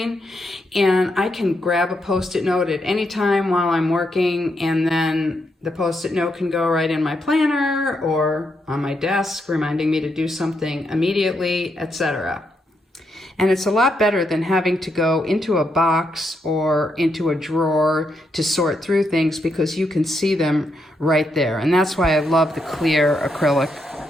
and I can grab a Post-it note at any time while I'm working, and then the Post-it note can go right in my planner or on my desk, reminding me to do something immediately, etc. And it's a lot better than having to go into a box or into a drawer to sort through things, because you can see them right there. And that's why I love the clear acrylic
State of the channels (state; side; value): normal; both; correlation 0.80